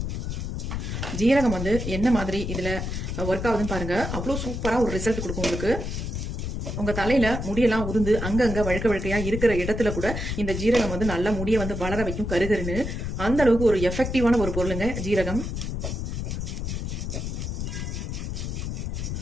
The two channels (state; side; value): noise; left; rumble, 4 dB below the sound